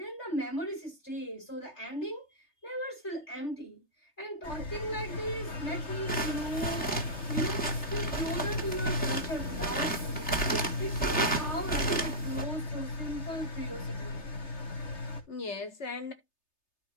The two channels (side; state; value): right; late; 3.3 ms